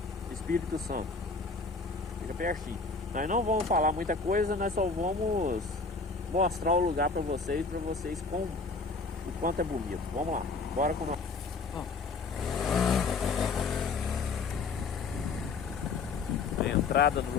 Espírito Santo. Fica pertinho. Nós não vamos falar muita coisa, nós só vamos mostrar o lugar para vocês com o quanto é bonito. Vamos lá, bora com nós. A entrada do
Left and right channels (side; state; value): right; quieter; 4.2 dB